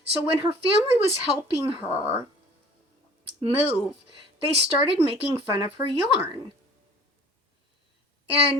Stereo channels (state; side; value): normal; both; correlation 0.48